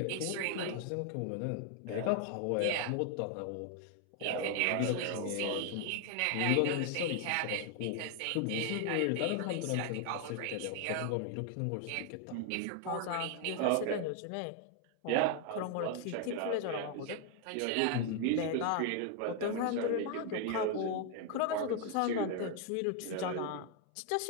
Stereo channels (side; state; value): both; different; correlation 0.00